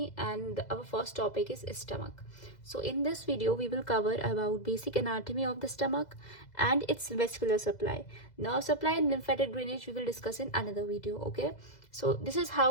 and our first topic is stomach. So in this video we will cover about basic anatomy of the stomach and its vascular supply. Nerve supply and lymphatic drainage we will discuss in another video. Okay, so this is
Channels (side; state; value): right; late; 2.0 ms